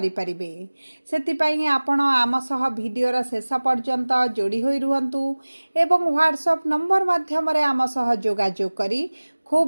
परिबे। सेतिपई आपण आम सह वीडियोर शेष पर्यंत जोड़ी होई रुहंतु एवं व्हाट्सएप नंबर माध्यम रे आम सह जोगाजोग करी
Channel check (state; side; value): inverted; both; correlation -1.00